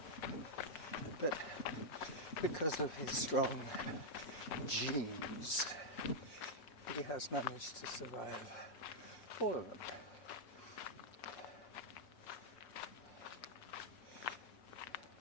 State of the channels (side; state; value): right; late; 5.8 ms